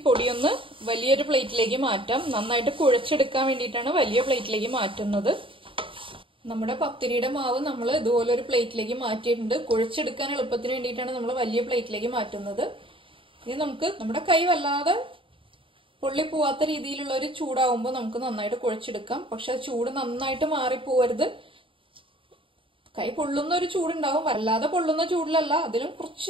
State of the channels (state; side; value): late; left; 0.25 ms